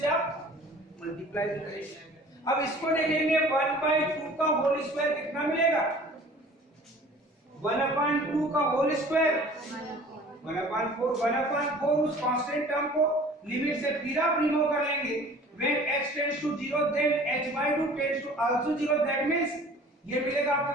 आप मल्टीप्लाई करेंगे। अब इसको देखेंगे 1 बाय 2 का होल स्क्वायर कितना मिलेगा, 1/2 का होल स्क्वायर 1/4, 1/4 उस कांस्टेंट टर्म को लिमिट से फिर आप रिमूव कर लेंगे। when x tends to 0 then h by 2 tends to also 0, that means ये मिलेगा आपके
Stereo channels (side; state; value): both; normal; correlation 0.47